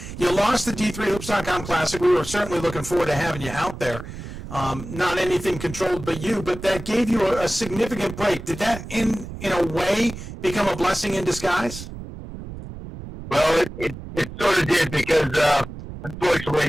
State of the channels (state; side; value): noise; right; rumble, 11 dB below the sound